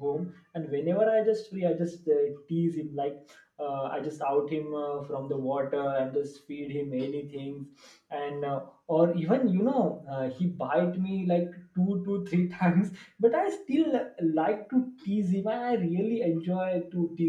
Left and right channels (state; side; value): identical; both; correlation 1.00